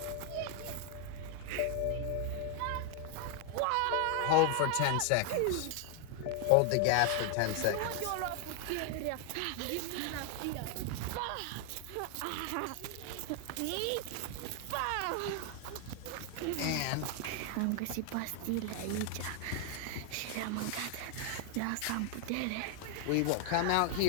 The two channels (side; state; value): both; different; correlation 0.00